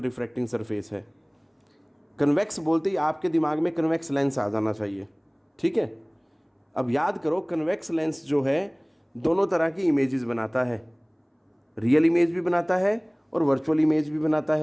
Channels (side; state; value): both; identical; correlation 1.00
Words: रिफ्रैक्टिंग सरफेस है। कन्वेक्स बोलते ही आपके दिमाग में कन्वेक्स लेंस आ जाना चाहिए, ठीक है। अब याद करो, कन्वेक्स लेंस जो है दोनों तरह की इमेजेस बनाता है, रियल इमेज भी बनाता है और वर्चुअल इमेज भी बनाता